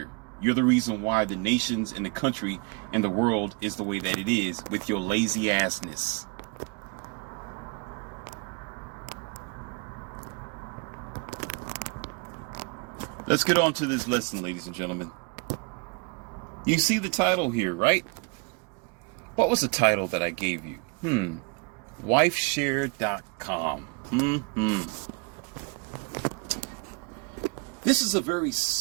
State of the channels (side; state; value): left; quieter; 31.6 dB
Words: You're the reason why the nations and the country and the world is the way that it is, with your lazy assness. Let's get on to this lesson, ladies and gentlemen. You see the title here, right? What was the title that I gave you? Wifeshare.com. This is a very